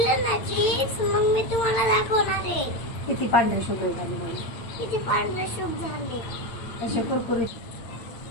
ना चिप्स मग मी तुम्हाला दाखवणार आहे किती पांढरे शुभ्र झाले म्हणून. किती पांढरे शुभ झाले. असे कुरकुरीत.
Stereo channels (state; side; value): late; right; 8.9 ms